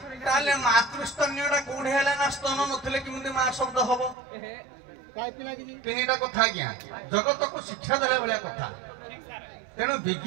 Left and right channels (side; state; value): left; drops out; at 4.2 s